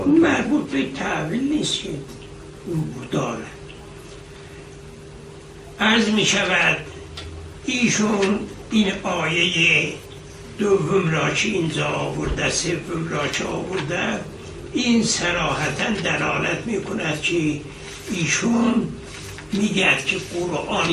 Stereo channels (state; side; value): identical; both; correlation 1.00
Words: مربوط به تعویل نیست که داره. عرض میشود ایشون این آیه دوم را که اینجا آورده سوم را که آورده این صراحتا دلالت میکند که ایشون میگه که قرآن